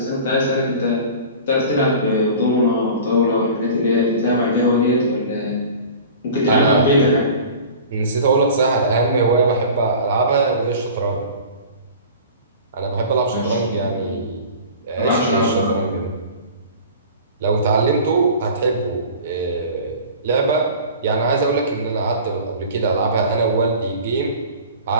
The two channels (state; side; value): inverted; both; correlation -0.40